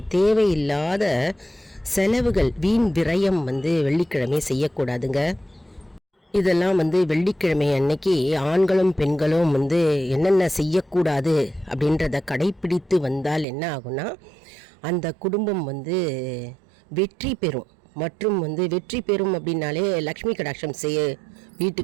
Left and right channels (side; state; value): left; drops out; at 13.5 s